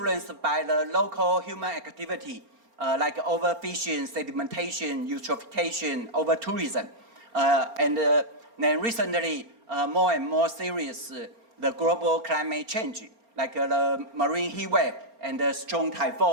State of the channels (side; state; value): left; late; 4.3 ms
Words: by the local human activity, like overfishing, sedimentation, eutrophication, over-tourism, and then recently, more and more serious, the global climate change, like the marine heat wave and the strong